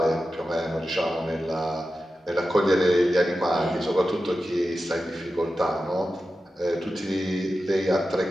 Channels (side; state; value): both; normal; correlation 0.92